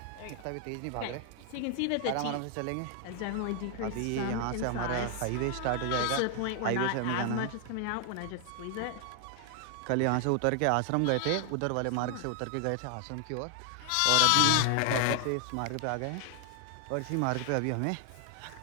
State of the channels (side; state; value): both; different; correlation 0.00